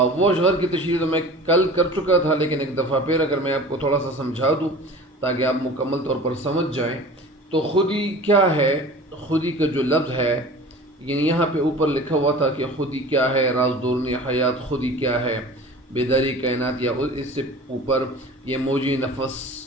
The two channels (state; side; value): normal; both; correlation 0.40